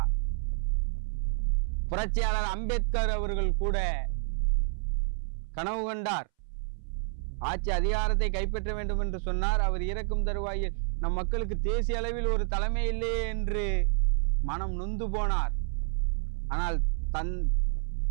புரட்சியாளர் அம்பேத்கர் அவர்கள் கூட கனவு கண்டார், ஆட்சி அதிகாரத்தை கைப்பற்ற வேண்டும் என்று சொன்னார். அவர் இறக்கும் தருவாயில் நம் மக்களுக்கு தேசிய அளவில் ஒரு தலைமை இல்லையே என்று மனம் நொந்து போனார். ஆனால்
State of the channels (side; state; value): left; silent; 58 dB below the other